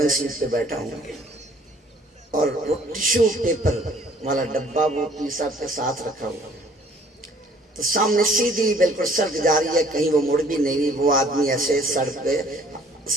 سیٹ پہ بیٹھا ہوں، اور وہ ٹیشو پیپر والا ڈبہ وہ پیر صاحب کے ساتھ رکھا ہوا، تو سامنے سیدھی بالکل سڑک جا رہی ہے، کہیں وہ مڑ بھی نہیں رہی، وہ آدمی ایسے سڑک پہ،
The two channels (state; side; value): normal; both; correlation 0.57